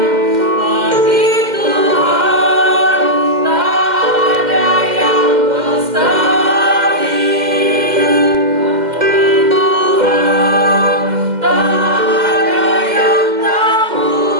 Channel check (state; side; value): late; left; 2.1 ms